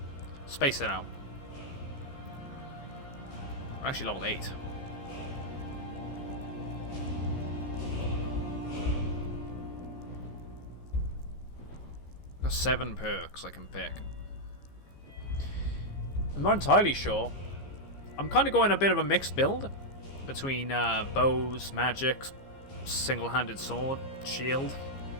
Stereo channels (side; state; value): right; late; 15 ms